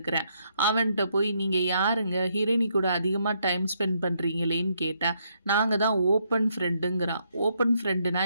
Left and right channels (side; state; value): both; inverted; correlation -0.75